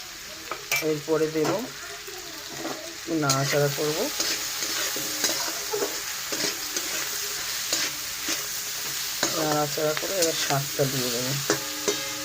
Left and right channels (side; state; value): both; identical; correlation 1.00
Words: এরপরে দেব, নাড়াচাড়া করবো। নাড়াচাড়া করে এবার শাকটা দিয়ে দেবো।